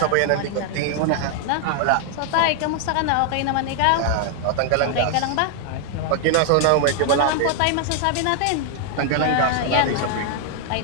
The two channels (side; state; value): both; different; correlation 0.00